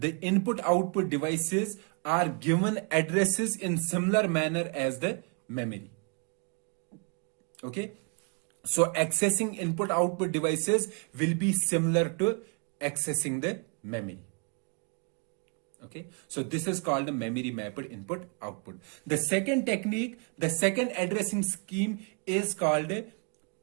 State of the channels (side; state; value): left; quieter; 35.4 dB